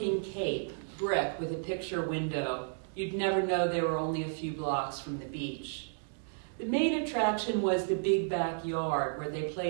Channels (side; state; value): left; silent; digital silence